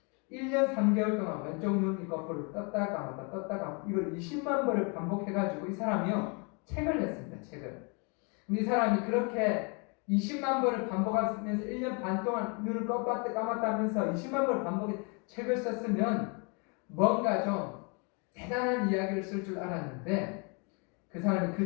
1년 3개월 동안 왼쪽 눈 거꾸로 떴다 감았다 이걸 20만 번을 반복해가지고 이 사람이요 책을 냈습니다. 책을. 근데 이 사람이 그렇게 20만 번을 반복하면서 1년 반 동안 눈을 껐다 감았다 하면서 20만 번을 반복해 책을 썼으면 뭔가 좀 대단한 이야기를 쓸 줄 알았는데, 그 사람이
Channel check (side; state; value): right; quieter; 33.8 dB